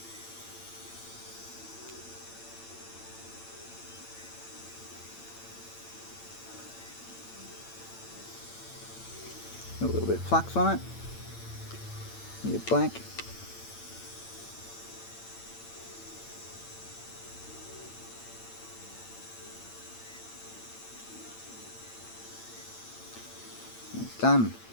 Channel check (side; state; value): right; late; 8.9 ms